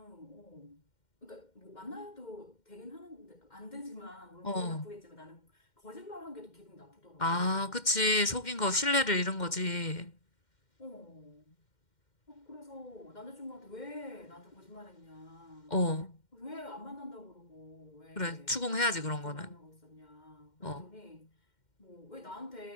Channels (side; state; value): right; late; 2.1 ms